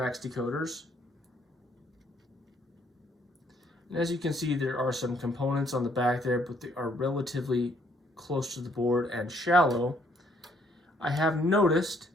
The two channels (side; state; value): both; normal; correlation 0.67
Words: decoders. And as you can see, there are some components on the back there, but they are relatively close to the board and shallow. I have noticed